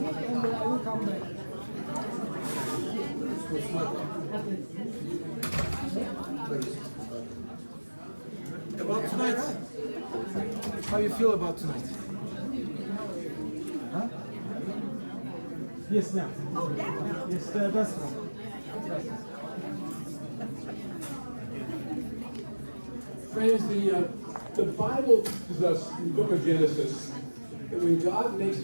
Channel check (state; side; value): inverted; both; correlation -1.00